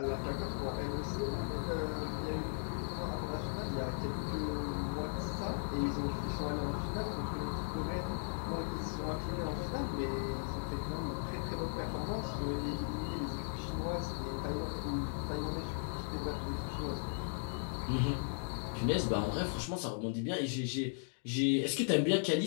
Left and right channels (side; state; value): right; silent; digital silence